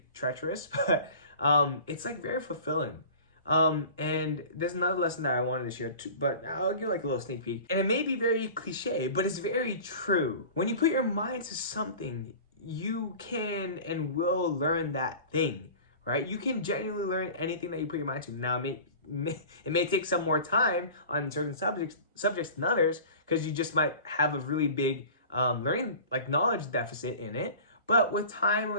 treacherous, but it's like very fulfilling. And there's another lesson that I wanted to share too, but I'll give like a little sneak peek. And it may be very cliche, but it's very true. When you put your mind to something, you can and will learn that thing, right? You can genuinely learn anything that you put your mind to. Now, it may take some more time on certain subjects than others, because you just might have a really big learning, like, knowledge deficit in it. But with time,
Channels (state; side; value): inverted; both; correlation -0.40